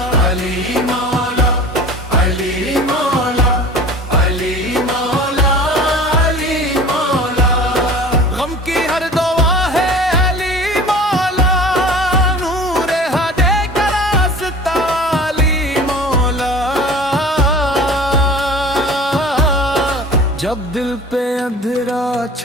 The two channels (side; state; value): both; normal; correlation 0.41